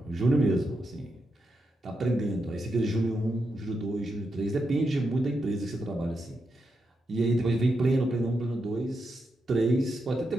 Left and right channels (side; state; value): both; normal; correlation 0.85